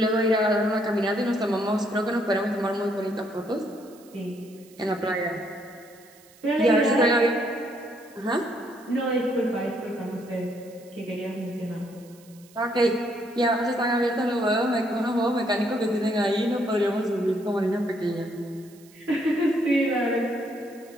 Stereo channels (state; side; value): noise; right; hiss, 26 dB below the sound